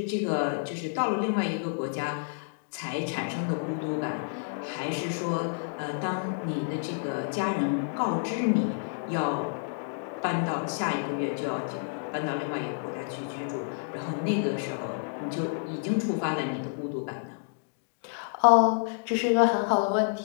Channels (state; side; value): silent; right; digital silence